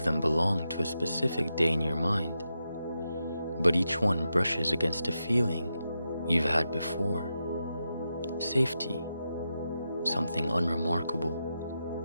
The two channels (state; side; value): inverted; both; correlation -0.87